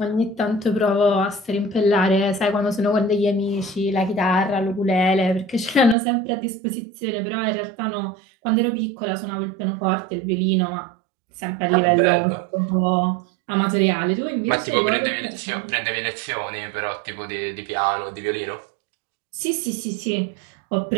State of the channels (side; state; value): left; drops out; at 6.0 s